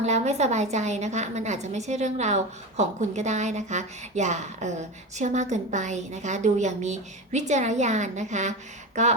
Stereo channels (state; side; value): normal; both; correlation 0.24